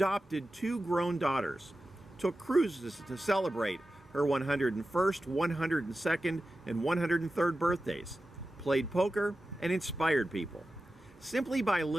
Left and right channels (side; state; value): both; normal; correlation 0.93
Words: 2 grown daughters, took cruises to celebrate her 101st, 102nd, and 103rd birthdays, played poker, and inspired people. Simply by